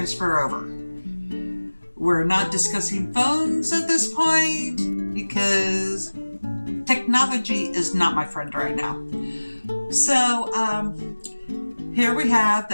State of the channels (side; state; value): both; inverted; correlation -1.00